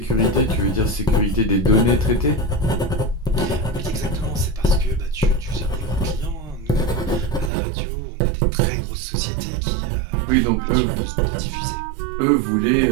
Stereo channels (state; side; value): drops out; left; at 7.5 s